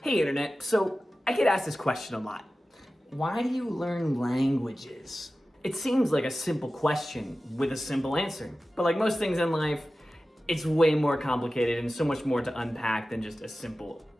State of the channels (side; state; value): both; normal; correlation 0.95